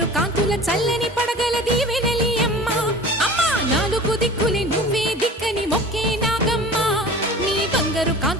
కాంతుల చల్లని పడగల దీవెనలి అమ్మ అమ్మా నాలుగు దిక్కులే నువ్వే దిక్కని మొక్కే నాగమ్మ నీ బంగారు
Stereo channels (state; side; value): normal; both; correlation 0.40